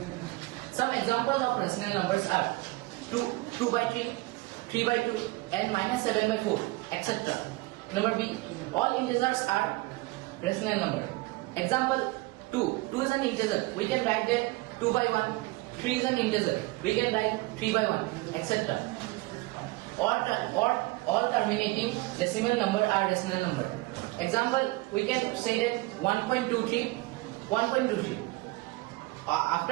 Some example of rational numbers are 2 by 3, 3 by 2, and minus 7 by 4, etc. Number B, all integers are rational number. Example 2 is an integer. We can write that 2 by 1. 3 is an integer. We can write 3 by 1, etc. All terminating decimal number are rational number. Example, we can say that 1.23.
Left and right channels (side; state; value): left; quieter; 21.7 dB